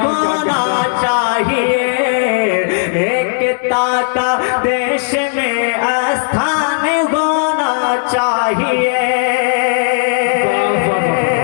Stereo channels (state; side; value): silent; right; digital silence